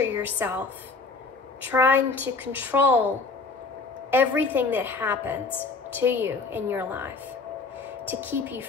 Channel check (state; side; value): quieter; right; 4.2 dB